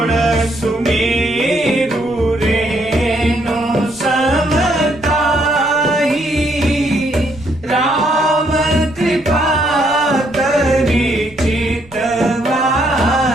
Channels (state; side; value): noise; right; rumble, 26 dB below the sound